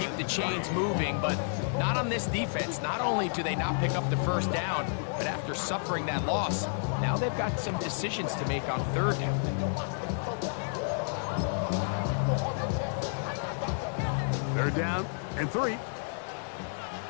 the chains moving, but not on this defense. Not only do they not pick up the 1st down, but after suffering that loss, now they've got some decisions to make on 3rd down. 3rd down and 3.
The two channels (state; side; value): silent; right; digital silence